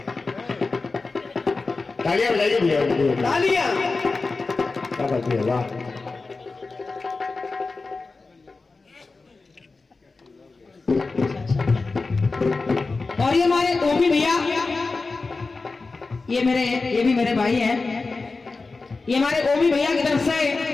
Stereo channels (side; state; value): right; quieter; 3.9 dB